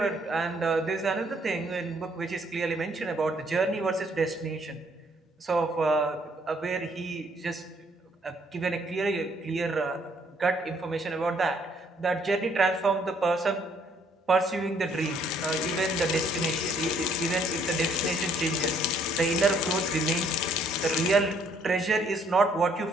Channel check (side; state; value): both; normal; correlation 0.65